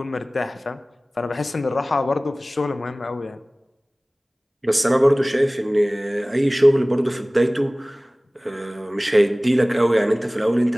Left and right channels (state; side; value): normal; both; correlation 0.98